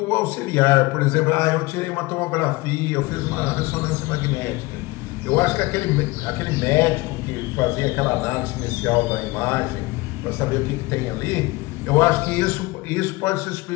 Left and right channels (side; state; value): right; quieter; 22.0 dB